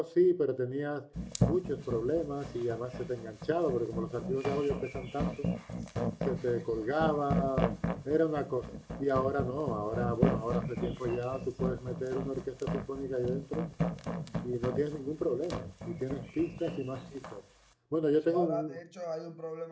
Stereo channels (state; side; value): identical; both; correlation 1.00